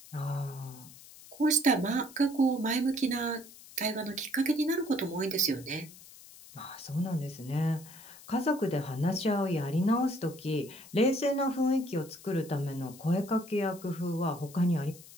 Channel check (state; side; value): noise; left; hiss, 19 dB below the sound